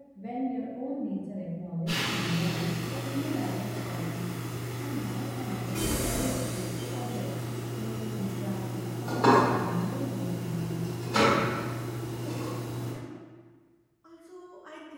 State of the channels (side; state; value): both; identical; correlation 1.00